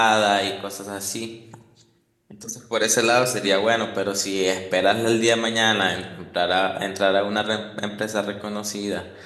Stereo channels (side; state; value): both; identical; correlation 1.00